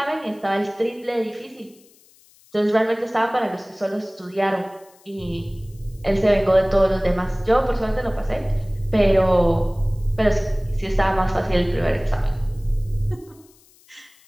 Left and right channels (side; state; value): left; noise; hiss, 29 dB below the sound